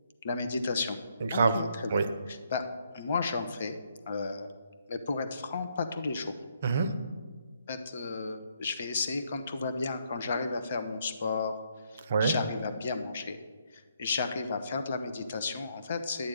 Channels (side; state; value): both; inverted; correlation -0.72